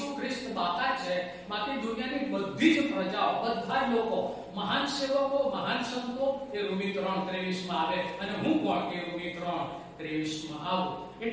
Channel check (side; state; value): both; identical; correlation 1.00